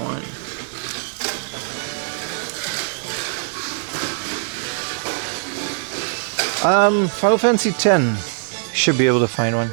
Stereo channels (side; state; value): left; silent; digital silence